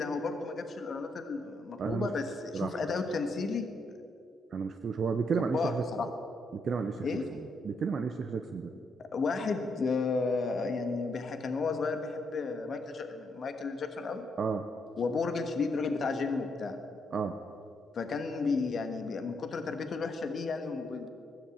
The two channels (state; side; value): normal; both; correlation 0.76